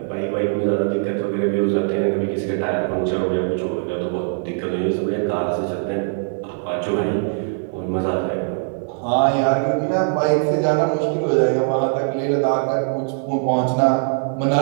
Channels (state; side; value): silent; left; 63 dB below the other